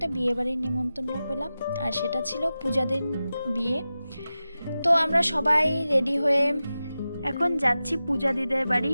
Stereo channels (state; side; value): inverted; both; correlation -0.94